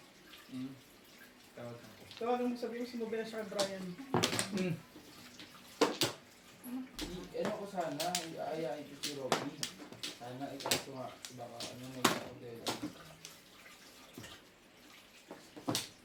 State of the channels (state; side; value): identical; both; correlation 1.00